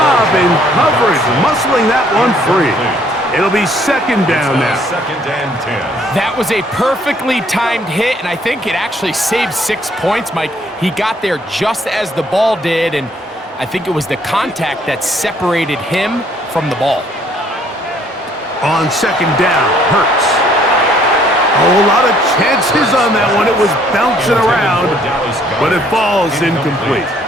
in coverage, muscling that one free. It'll be second down now. Second and 10. That was a perfectly timed hit, and I think it actually saved 6 points, Mike. He got there just as the ball did, and I think it was the contact that separated him from the ball. On second down, Hurts. A whole lot of chances on that one. It was bouncing around, but it falls incomplete.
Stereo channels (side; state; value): both; normal; correlation 0.63